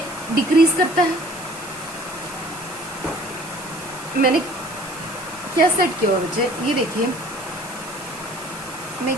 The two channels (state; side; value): noise; right; hiss, 16 dB below the sound